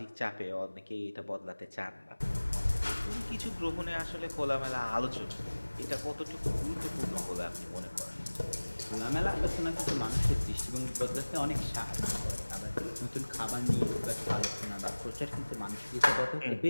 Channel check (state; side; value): inverted; both; correlation -1.00